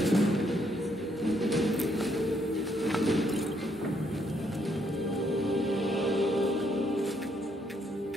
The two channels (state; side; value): normal; both; correlation 0.72